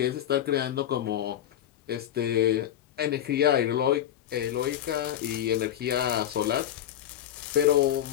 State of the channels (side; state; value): right; quieter; 11.2 dB